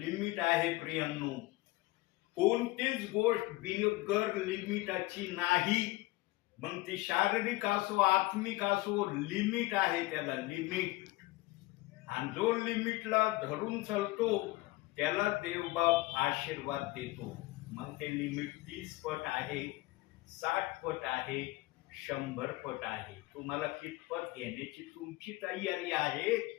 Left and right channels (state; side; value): quieter; right; 20.4 dB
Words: आहे प्रियांनो, कोणतीच गोष्ट बिगर लिमिटाची नाही. मग ती शारीरिक असो आत्मिक असो, लिमिट आहे त्याला, लिमिट. आणि जो लिमिटला धरून चालतो त्याला देवबाप आशीर्वाद देतो. मग ते लिमिट 30 पट आहे, 60 पट आहे, 100 पट आहे. तुम्हाला कितपत घेण्याची तुमची तयारी आहे